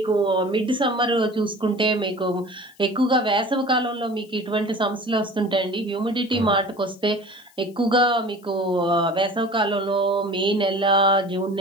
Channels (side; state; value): left; noise; hiss, 29 dB below the sound